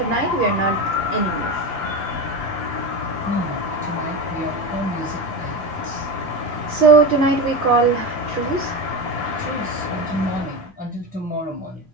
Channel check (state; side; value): normal; both; correlation 0.21